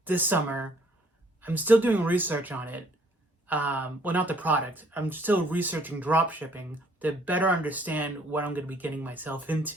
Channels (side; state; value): both; normal; correlation 0.61